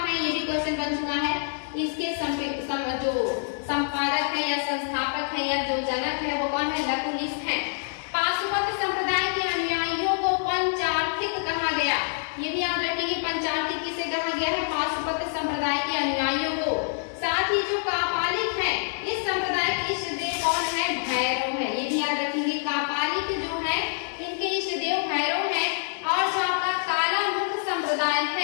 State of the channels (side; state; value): right; silent; digital silence